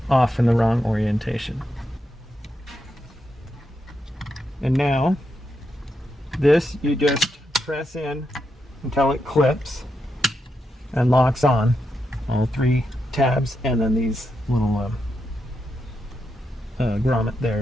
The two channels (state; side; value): normal; both; correlation 0.84